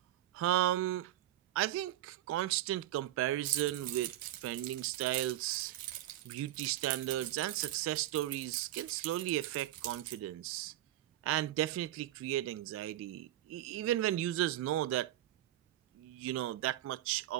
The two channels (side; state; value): left; quieter; 13.9 dB